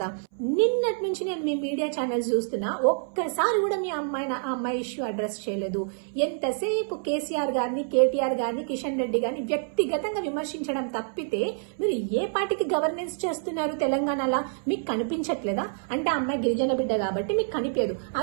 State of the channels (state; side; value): silent; left; 60 dB below the other